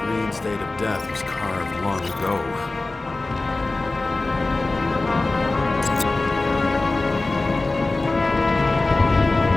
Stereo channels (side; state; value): right; quieter; 3.2 dB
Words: Green's date of death was carved long ago.